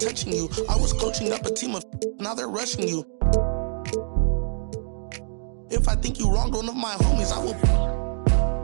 you. I was coaching up a team of. Now they're rushing you. If I think you wronged one of my homies, I will.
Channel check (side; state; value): left; silent; 62 dB below the other